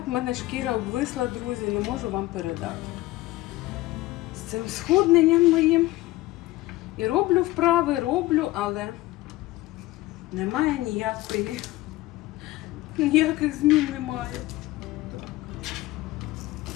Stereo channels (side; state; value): right; quieter; 18.1 dB